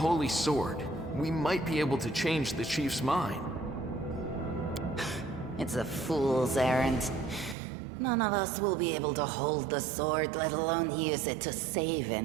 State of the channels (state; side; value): drops out; left; at 7.6 s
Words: sword, we might be able to change the chief's mind. It's a fool's errand. None of us will be able to hold the sword, let alone use it to save